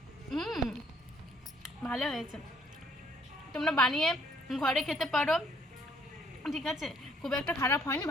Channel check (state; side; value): normal; both; correlation 0.65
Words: ভালো হয়েছে, তোমরা বানিয়ে ঘরে খেতে পারো, ঠিক আছে? খুব একটা খারাপ হয়নি,